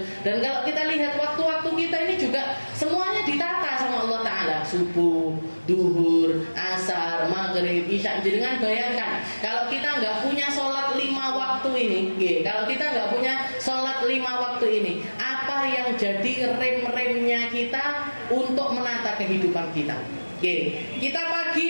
Dan kalau kita lihat waktu-waktu kita ini juga semuanya ditata sama Allah Ta'ala. Subuh, duhur, asar, maghrib, isya. Jangan bayangkan kalau kita nggak punya sholat 5 waktu ini. Kalau kita nggak punya sholat 5 waktu ini, apa yang jadi rem-remnya kita untuk menata kehidupan kita? Kita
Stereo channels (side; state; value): both; inverted; correlation -1.00